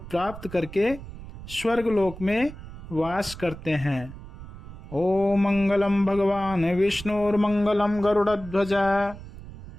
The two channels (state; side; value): noise; right; rumble, 14 dB below the sound